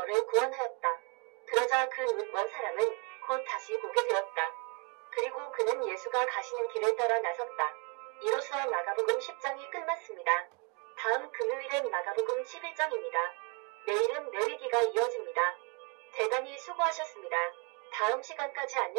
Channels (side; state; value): left; quieter; 33.3 dB